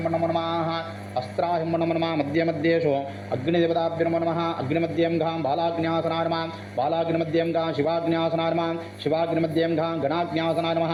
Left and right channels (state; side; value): identical; both; correlation 1.00